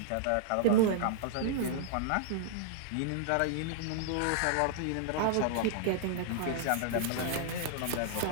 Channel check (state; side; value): different; both; correlation -0.01